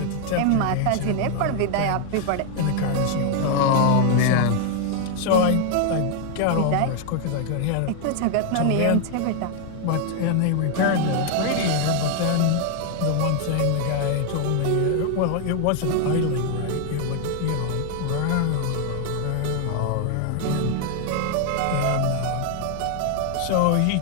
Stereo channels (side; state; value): both; different; correlation 0.00